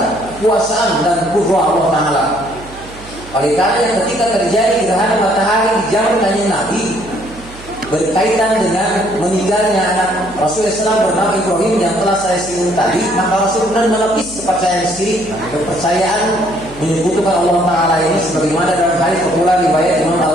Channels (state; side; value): noise; right; hum, 18 dB below the sound